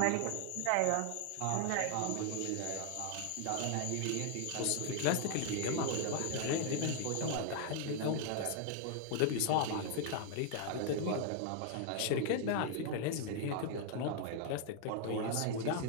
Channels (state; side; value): different; both; correlation 0.00